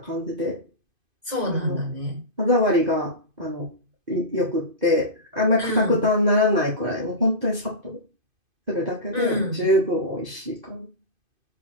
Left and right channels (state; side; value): late; left; 2.5 ms